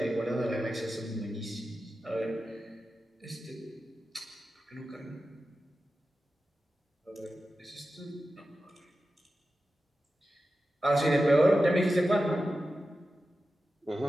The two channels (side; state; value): both; normal; correlation 0.92